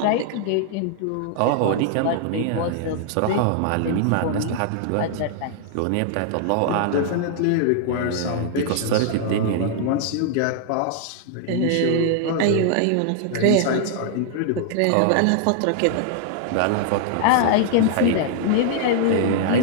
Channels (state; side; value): different; both; correlation -0.01